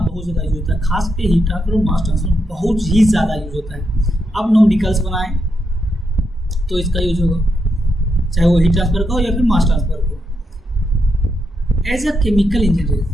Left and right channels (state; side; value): normal; both; correlation 0.82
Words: ज़्यादा यूज होता है। खास के हीट ट्रांसफर और मास ट्रांसफर बहुत ही ज़्यादा यूज होता है। आप न्यूमेरिकल्स बनाएं तो इसका यूज होगा, चाहे वो हीट ट्रांसफर का हो या फिर मास ट्रांसफर का हो। एज अ केमिकल